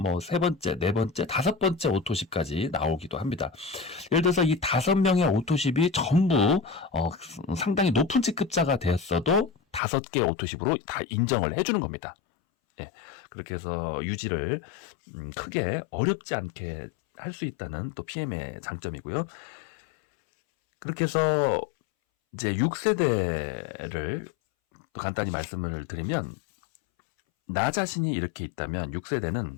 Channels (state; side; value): drops out; right; at 9.8 s